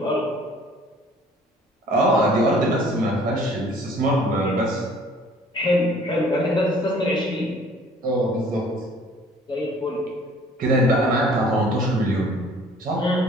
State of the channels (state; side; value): normal; both; correlation 0.54